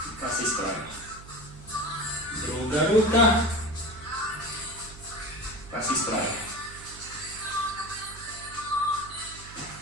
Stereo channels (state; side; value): noise; right; hum, 17 dB below the sound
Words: pa se ispravimo. Druga ruka, pa se ispravimo.